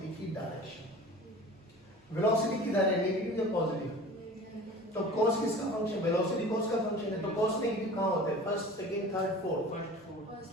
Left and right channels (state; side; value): normal; both; correlation 0.41